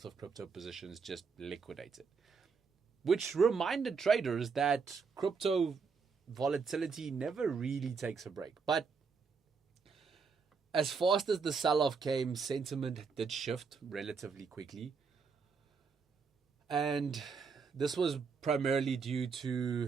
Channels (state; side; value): quieter; left; 5.3 dB